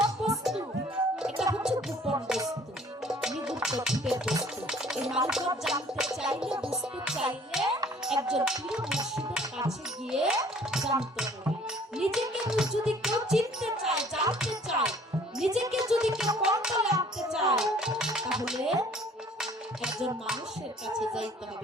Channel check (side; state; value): both; normal; correlation 0.54